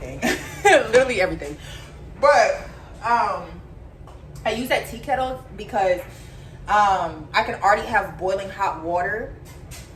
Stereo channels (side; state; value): both; identical; correlation 1.00